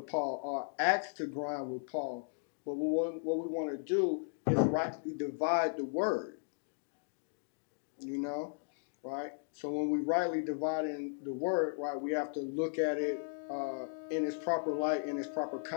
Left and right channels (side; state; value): right; silent; digital silence